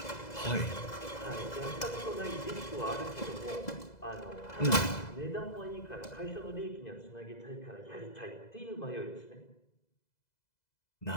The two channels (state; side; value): late; right; 2.0 ms